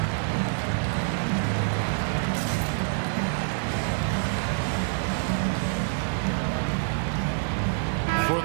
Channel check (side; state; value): left; silent; digital silence